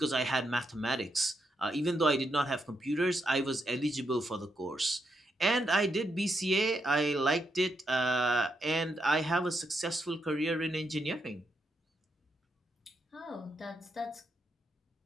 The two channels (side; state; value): both; normal; correlation 0.80